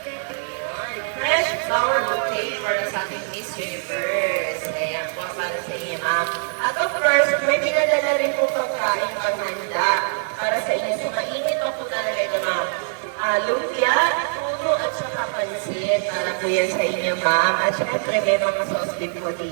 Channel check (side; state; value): left; silent; digital silence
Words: Fresh flower bouquet para sa ating Miss Universe. Ayan po, para sa inyo, ma'am. At of course, may pinadala rin po pagkain panghanda para sa inyo. So, mainit pa po talaga ito, ma'am. Lumpia, tulo, at saka pansit. Para po yan sa inyo, ma'am. At syempre, may mga sauce din po